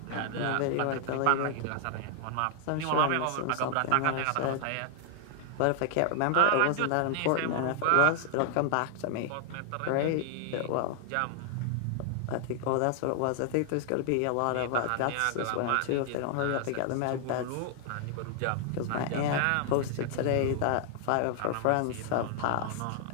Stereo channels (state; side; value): different; both; correlation 0.00